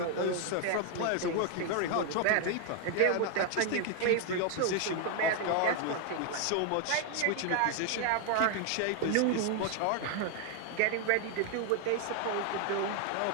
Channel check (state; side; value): different; both; correlation 0.00